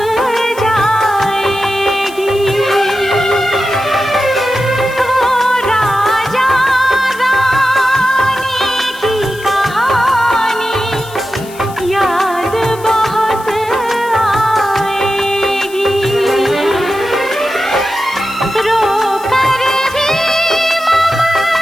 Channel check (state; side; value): noise; left; hiss, 19 dB below the sound